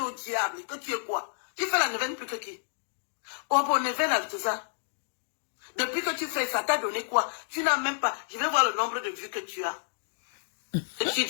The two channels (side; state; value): right; silent; digital silence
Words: au diable que tu es quoi? Tu fais la neuvaine plus que qui? Oh, bon, neuvaine avec tout ça. Depuis que tu fais ça, t'as donné quoi? Tu n'as même pas. Je vais voir le nombre de vues que tu as. Et tu